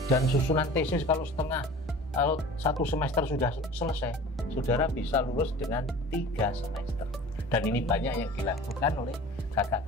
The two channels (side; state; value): both; normal; correlation 0.41